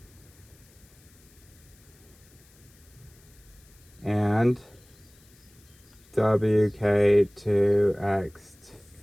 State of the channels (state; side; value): noise; left; hiss, 28 dB below the sound